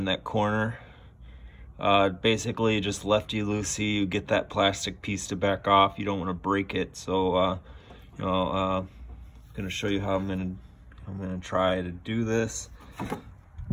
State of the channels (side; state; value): both; identical; correlation 1.00